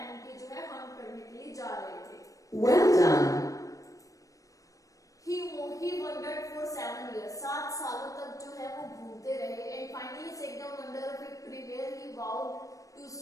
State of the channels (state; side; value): late; right; 0.16 ms